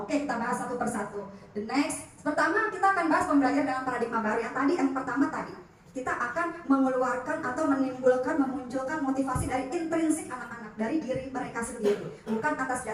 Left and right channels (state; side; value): identical; both; correlation 1.00